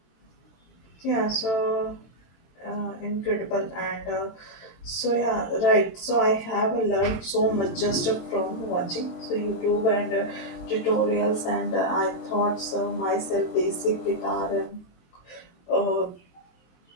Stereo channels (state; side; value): late; right; 23 ms